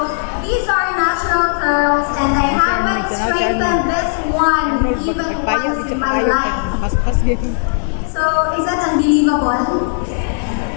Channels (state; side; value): silent; right; 63 dB below the other